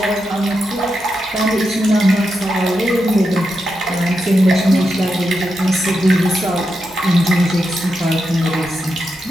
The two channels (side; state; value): both; normal; correlation 0.86